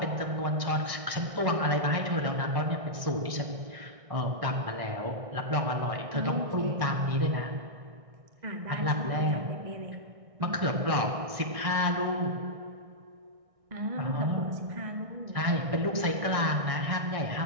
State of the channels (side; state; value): left; late; 1.6 ms